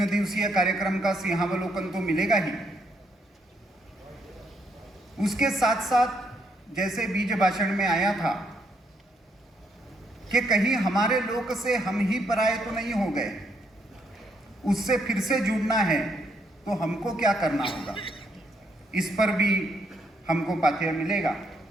दिवसीय कार्यक्रम का सिंहावलोकन तो मिलेगा ही, उसके साथ साथ जैसे बीज भाषण में आया था कि कहीं हमारे लोक से हम ही पराये तो नहीं हो गए, उससे फिर से जुड़ना है तो हमको क्या करना होगा, इस पर भी हमको पाठ्य मिलेगा।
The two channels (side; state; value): both; normal; correlation 0.74